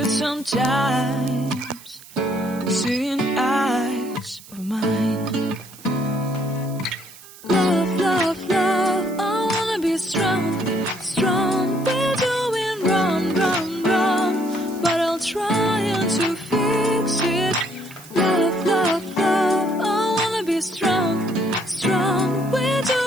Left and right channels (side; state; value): right; noise; hiss, 20 dB below the sound